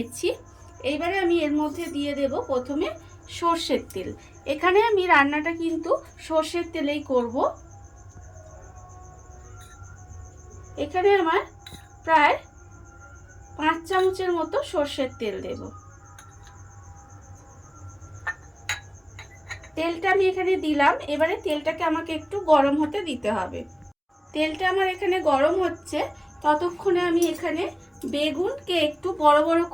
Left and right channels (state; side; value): identical; both; correlation 1.00